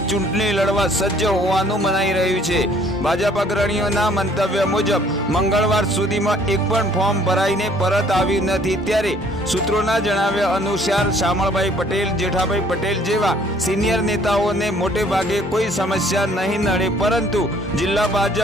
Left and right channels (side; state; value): both; normal; correlation 0.59